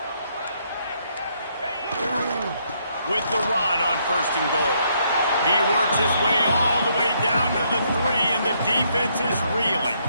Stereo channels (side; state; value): both; inverted; correlation -0.72